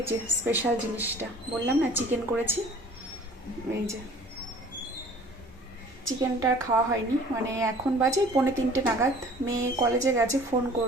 যে স্পেশাল জিনিসটা বললাম না, চিকেন করেছি। এই যে চিকেনটা খাওয়া হয়নি, মানে এখন বাজে 2:45 নাগাদ, মেয়ে কলেজে গেছে, ফোন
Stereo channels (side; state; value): both; normal; correlation 0.49